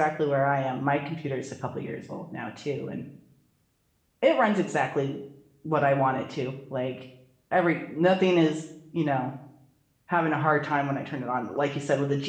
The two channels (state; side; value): identical; both; correlation 1.00